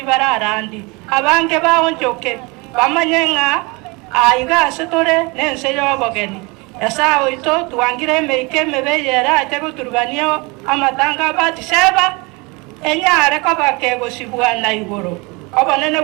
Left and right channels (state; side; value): quieter; left; 27.1 dB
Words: bararandi abange baonjoke bamanyenga aigase tore nense y'obogeni Asawe to tuangire emeike mebeyera ate guturubania amatanga Batiseba enyare ko bakegosibwa na igoro obonene